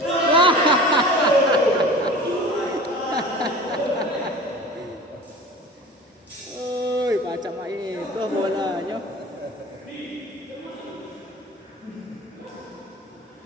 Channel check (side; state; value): both; normal; correlation 0.39